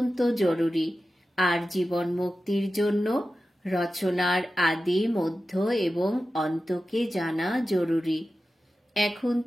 জরুরি, আর জীবন মুক্তির জন্য রচনার আদি, মধ্য এবং অন্তকে জানা জরুরি। এখন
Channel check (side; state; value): both; normal; correlation 0.93